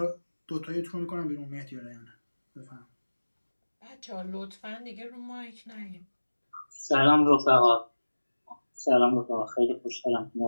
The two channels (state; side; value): inverted; both; correlation -1.00